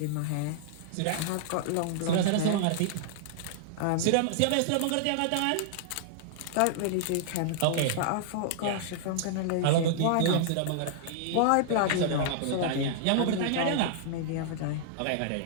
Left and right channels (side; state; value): both; different; correlation -0.01